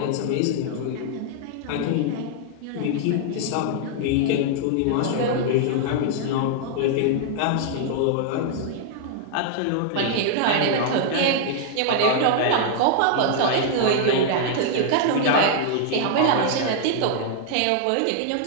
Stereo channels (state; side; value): different; both; correlation -0.01